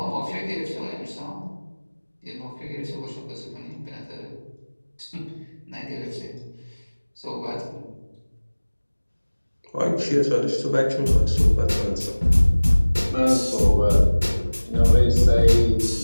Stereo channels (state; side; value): inverted; both; correlation -1.00